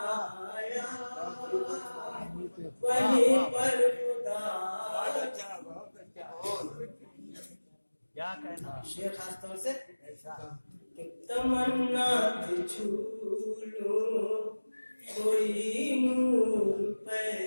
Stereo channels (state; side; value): inverted; both; correlation -1.00